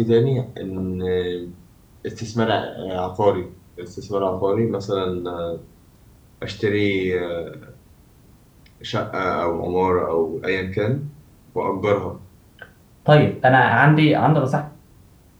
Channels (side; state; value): both; identical; correlation 1.00